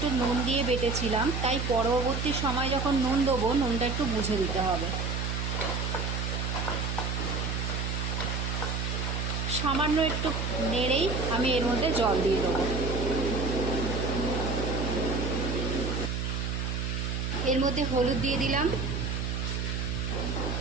নুন দিয়ে বেটেছিলাম, তাই পরবর্তী সময় যখন নুন দেবো নুনটা একটু বুঝে দিতে হবে। সামান্য একটু নেড়েই আমি এর মধ্যে জল দিয়ে দেবো। এর মধ্যে হলুদ দিয়ে দিলাম।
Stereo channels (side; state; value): right; noise; hum, 2 dB below the sound